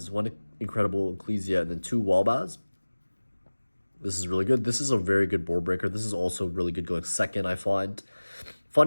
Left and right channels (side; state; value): both; inverted; correlation -1.00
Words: 1 Incredible Ecclesia, and then 2 Wall Baz. This is really good. This is a very good board breaker. This is also really good going second, I find.